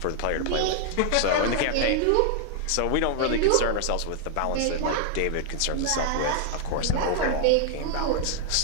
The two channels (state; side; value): different; both; correlation -0.01